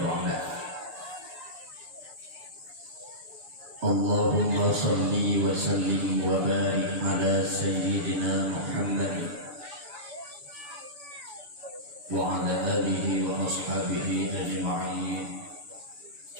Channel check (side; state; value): left; late; 6.9 ms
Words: ba'dah. Allahumma salli wa sallim wa barik ala sayyidina Muhammad wa ala alihi wa ashabihi ajma'in.